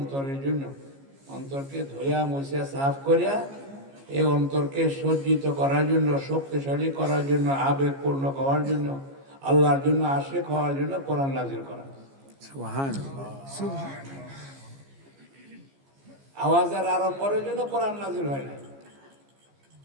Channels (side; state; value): left; late; 15 ms